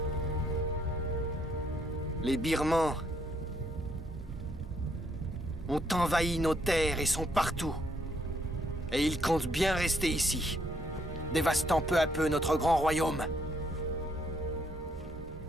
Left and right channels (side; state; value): both; normal; correlation 0.71